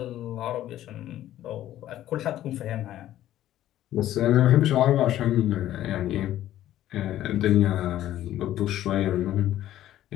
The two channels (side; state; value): right; quieter; 13.0 dB